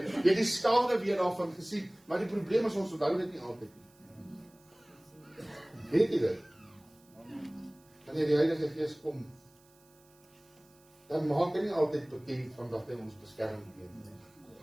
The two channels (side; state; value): right; noise; hiss, 30 dB below the sound